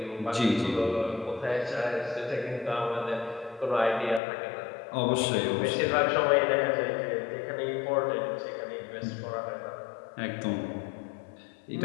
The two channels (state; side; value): drops out; right; at 4.2 s